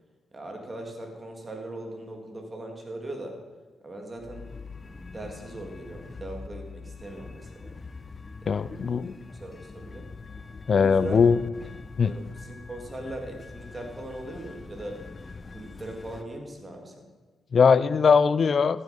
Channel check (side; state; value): right; quieter; 4.9 dB